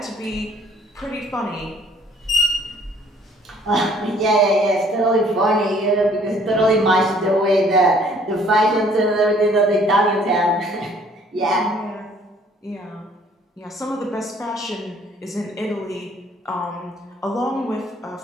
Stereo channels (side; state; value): both; normal; correlation 0.59